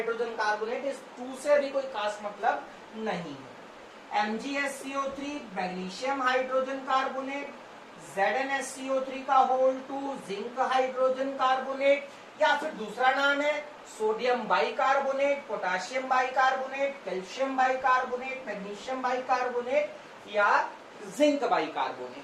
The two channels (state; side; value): identical; both; correlation 1.00